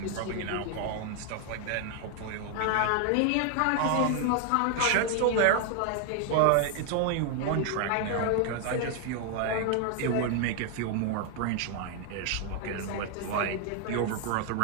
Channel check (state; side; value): different; both; correlation 0.00